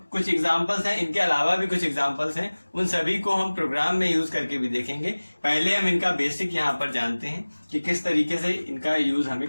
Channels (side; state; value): both; inverted; correlation -1.00